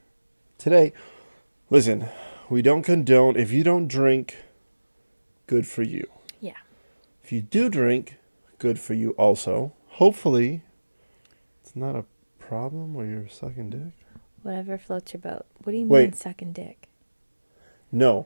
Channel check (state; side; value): inverted; both; correlation -1.00